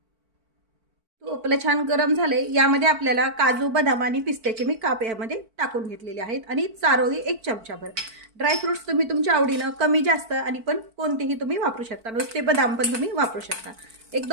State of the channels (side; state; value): left; late; 4.5 ms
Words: तूप आपलं छान गरम झाले, यामध्ये आपल्याला काजू, बदाम आणि पिस्त्याचे मी काप यामध्ये टाकून घेतलेले आहेत आणि चारोळी 1 चमचाभर। ड्रायफ्रुट्स तुम्ही तुमच्या आवडीनं कमी जास्त आणि पण कोणतेही तुम्ही वापरू शकता, नुसते बदाम पण तुम्ही वापरू शकता।